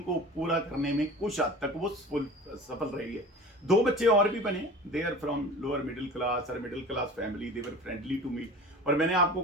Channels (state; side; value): normal; both; correlation 0.38